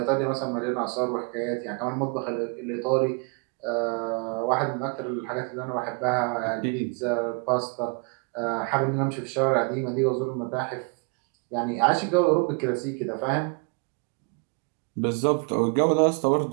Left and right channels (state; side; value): quieter; left; 34.5 dB